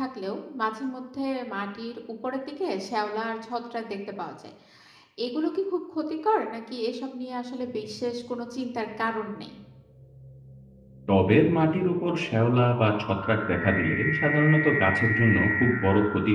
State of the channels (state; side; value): identical; both; correlation 1.00